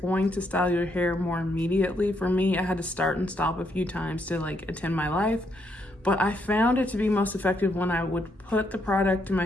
to style your hair more immediately. For me, I had to start and stop a few times to like attend my life, but I found it to be most effective when I would put the product in my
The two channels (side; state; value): both; normal; correlation 0.75